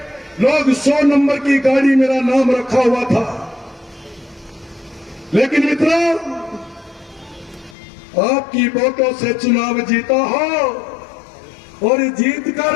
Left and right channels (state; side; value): drops out; right; at 7.8 s